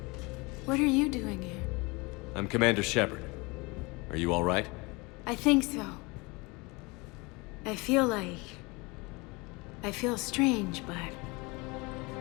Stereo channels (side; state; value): right; quieter; 26.1 dB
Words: What are you doing here? I'm Commander Shepard. Are you all right? I think so. I feel strange, but